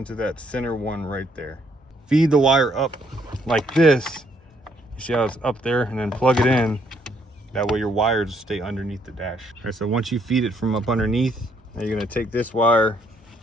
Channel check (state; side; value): normal; both; correlation 0.70